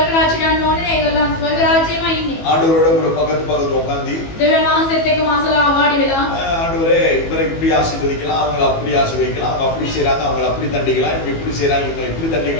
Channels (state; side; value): late; right; 18 ms